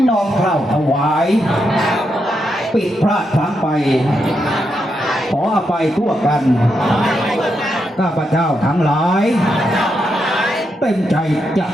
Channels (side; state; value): both; normal; correlation 0.83